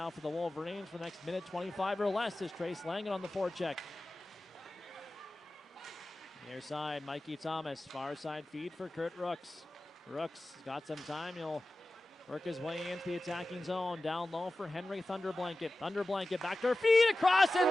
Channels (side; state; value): both; normal; correlation 0.95